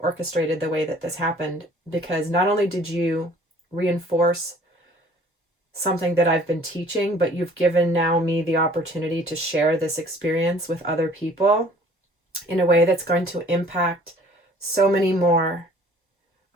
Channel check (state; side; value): normal; both; correlation 0.53